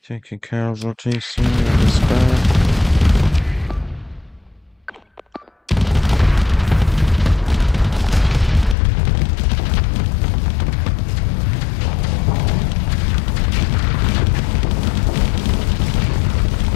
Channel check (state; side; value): drops out; right; at 8.8 s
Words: Taking casualties here is bad.